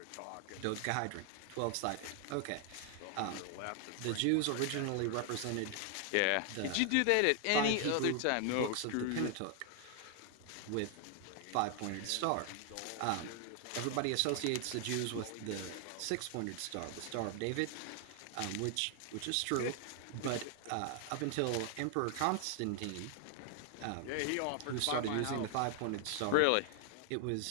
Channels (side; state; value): both; different; correlation 0.00